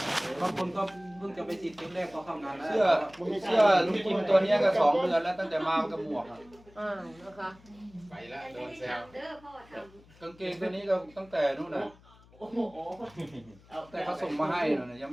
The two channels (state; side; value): noise; left; hum, 26 dB below the sound